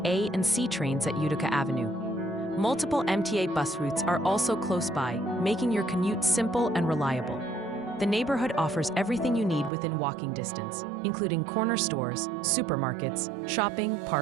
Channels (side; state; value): left; drops out; at 9.7 s